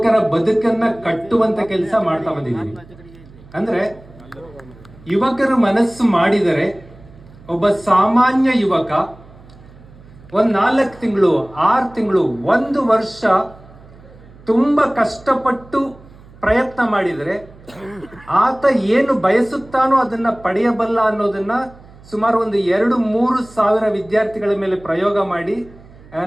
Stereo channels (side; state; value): right; noise; hum, 23 dB below the sound